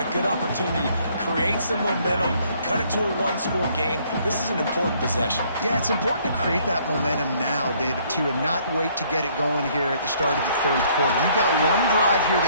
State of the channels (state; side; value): inverted; both; correlation -0.63